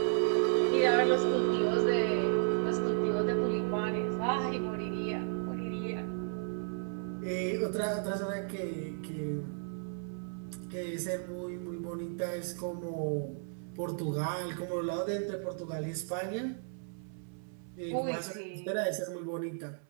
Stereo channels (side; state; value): left; silent; 55 dB below the other